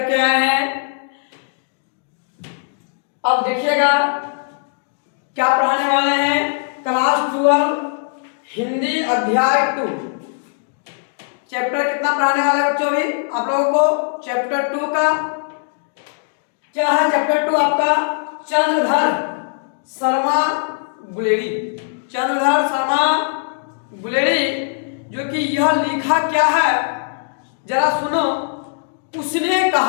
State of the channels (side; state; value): right; silent; digital silence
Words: के आए हैं। अब देखिएगा क्या पढ़ाने वाले हैं। क्लास 12 हिंदी अध्याय 2 चैप्टर कितना पढ़ाने वाले हैं बच्चों। अभी आप लोगों को चैप्टर 2 का क्या है। चैप्टर 2 आपका चंद्रधर शर्मा गुलेरी। चंद्रधर शर्मा गुलेरी जो कि यह लिखा क्या है जरा सुनो। उसने